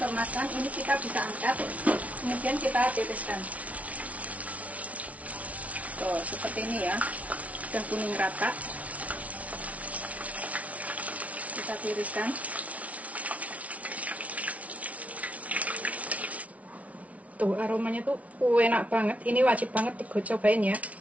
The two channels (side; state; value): left; late; 0.067 ms